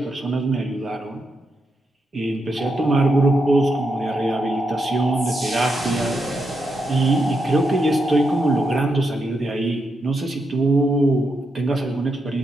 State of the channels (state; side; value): normal; both; correlation 0.83